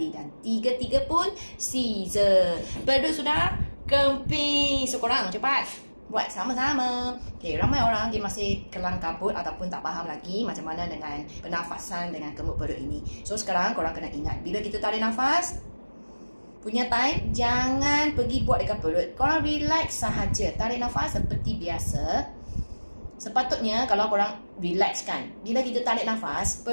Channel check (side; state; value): both; inverted; correlation -1.00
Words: dan 3 pun Caesar. Perut sudah kempis. So, korang cepat buat sama-sama. Okay, ramai orang dia masih kelang kabut ataupun tak faham lagi macam mana dengan pernafasan dengan kemut perut ini. So, sekarang korang kena ingat, bila kita tarik nafas, punya time, jangan pergi buat dekat perut. Korang relax sahaja. Tarik nafas seperti biasa. Sepatutnya kalau korang relax kan, bila kita tarik nafas,